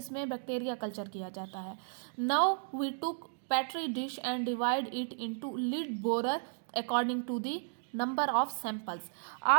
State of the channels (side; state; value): left; silent; digital silence